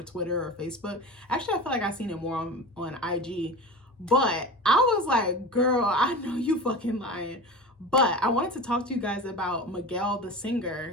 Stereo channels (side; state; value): both; normal; correlation 0.31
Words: Twitter or Facebook. Actually, I feel like I've seen it more on IG. But I was like, girl, I know you fucking lying. But I wanted to talk to you guys about Miguel, the singer,